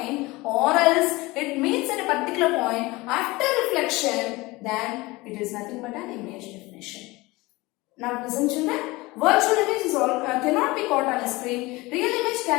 or else it meets at a particular point. After reflection, then it is nothing but an image definition. Now listen, children. Virtual image is cannot be caught on a screen. Real image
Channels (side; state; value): right; quieter; 21.9 dB